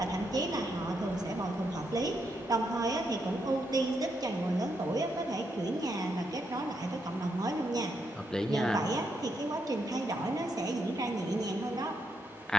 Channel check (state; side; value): normal; both; correlation 0.80